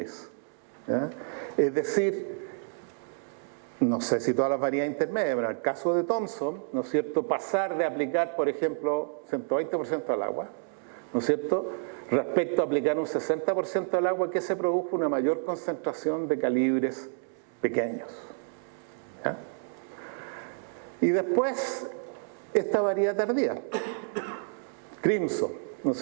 ¿Ya? Es decir, no sé si todas las variedades intermedias, pero en el caso de Thomson, ¿no es cierto?, pasar de aplicar, por ejemplo, 120% al agua, ¿no es cierto?, respecto a aplicar un 60% al agua, que se produjo una mayor concentración de calibres pequeños. ¿Ya? Y después, esta variedad tardía, Crimson, ¿no es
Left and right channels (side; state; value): left; silent; 58 dB below the other